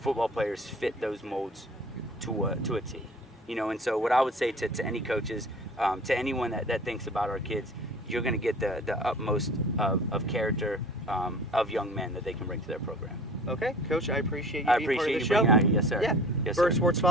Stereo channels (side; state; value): both; normal; correlation 0.44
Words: players fit those molds to a T. And so what I would say to any coaches, to anyone that thinks about our kids, you're going to get the utmost of character of young men that they can bring to their program. Okay, Coach, I appreciate you I being part of the appreciate you show. being out here. Yes, sir. Yeah. Yes, BURG sir. Sports